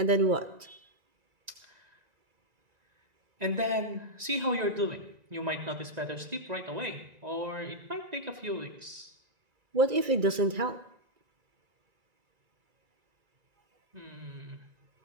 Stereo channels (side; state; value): left; late; 1.9 ms